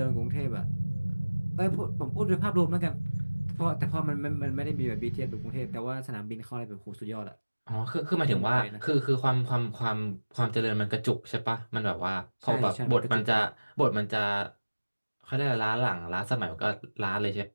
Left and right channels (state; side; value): inverted; both; correlation -1.00